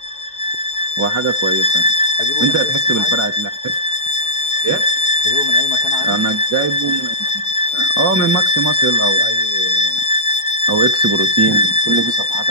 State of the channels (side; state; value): right; late; 2.6 ms